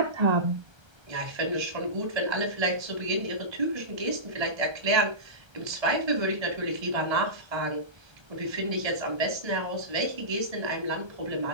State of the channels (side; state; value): left; late; 1.3 ms